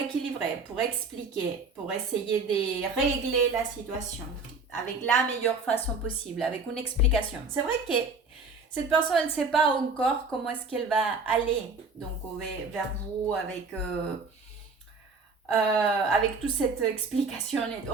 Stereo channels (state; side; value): quieter; left; 3.7 dB